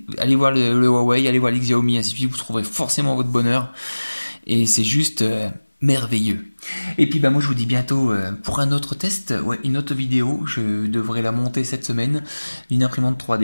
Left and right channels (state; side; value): inverted; both; correlation -1.00